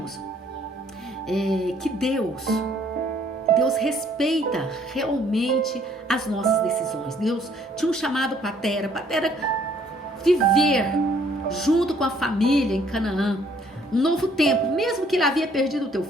Que Deus respeita realmente as nossas decisões. Deus tinha um chamado para Tera viver junto com a família em Canaã, um novo tempo. Mesmo que ele havia perdido o teu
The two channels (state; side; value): normal; both; correlation 0.63